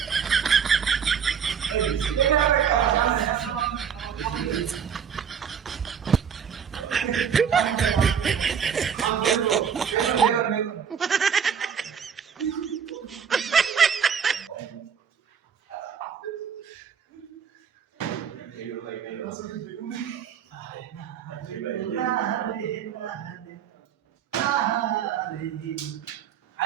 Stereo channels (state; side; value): quieter; left; 7.4 dB